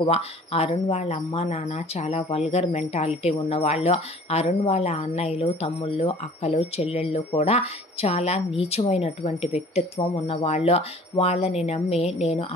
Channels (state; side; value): normal; both; correlation 0.49